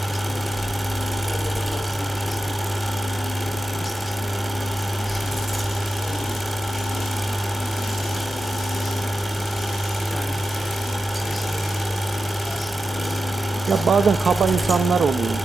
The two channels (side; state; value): both; normal; correlation 0.92